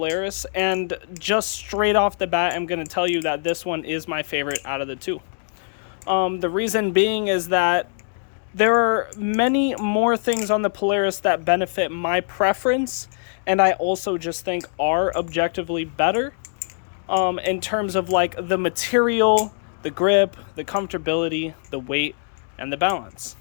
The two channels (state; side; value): silent; right; digital silence